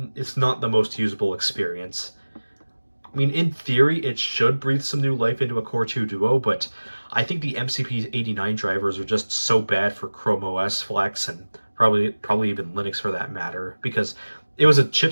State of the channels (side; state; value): both; inverted; correlation -1.00